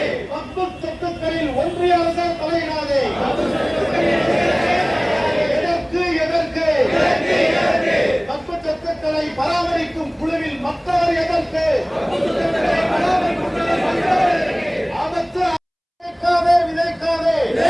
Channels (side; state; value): both; identical; correlation 1.00